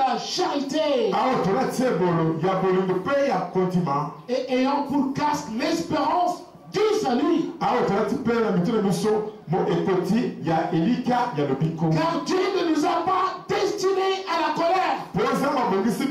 charité, et ayant pour casque l'espérance du salut. Car Dieu ne nous a pas destinés à la colère,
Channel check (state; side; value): identical; both; correlation 1.00